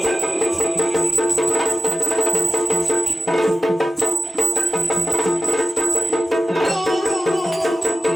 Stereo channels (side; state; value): both; normal; correlation 0.94